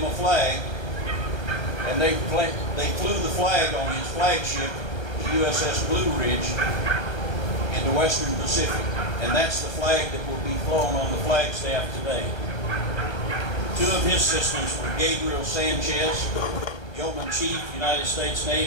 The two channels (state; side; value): late; right; 1.2 ms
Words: a flag, and they flew the flag on his flagship, the USS Blue Ridge, in the Western Pacific. And that's the flag that will be flown on the flagstaff today. Two of his assistants were Gabriel Sanchez, Yeoman Chief, United States